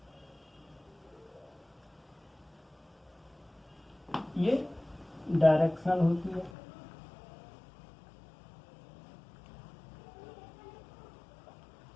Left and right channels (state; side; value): drops out; right; at 6.5 s